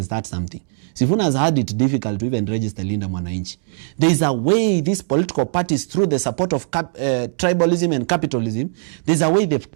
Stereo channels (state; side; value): silent; left; 66 dB below the other